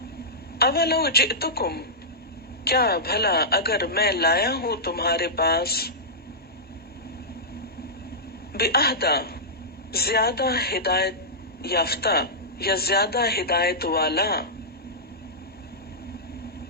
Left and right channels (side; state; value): both; normal; correlation -0.13